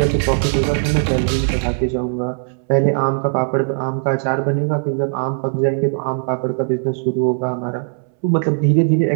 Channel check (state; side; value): silent; left; 67 dB below the other